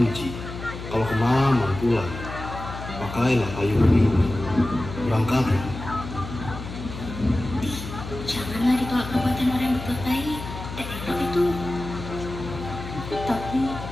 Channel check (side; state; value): left; noise; hum, 10 dB below the sound